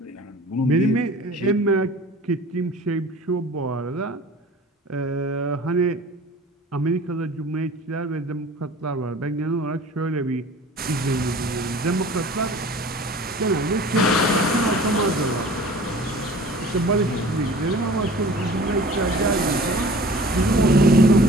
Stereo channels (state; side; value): normal; both; correlation 0.44